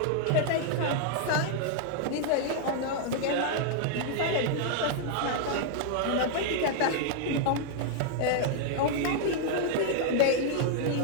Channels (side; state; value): both; different; correlation -0.01